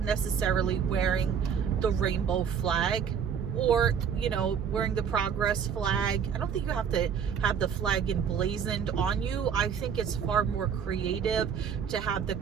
necessarily wearing the rainbow flag, or, you know, wearing the Progress flag. I don't think you have to have the flag emblazoned on you. I think it's far more creative to have the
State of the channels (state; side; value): quieter; left; 7.4 dB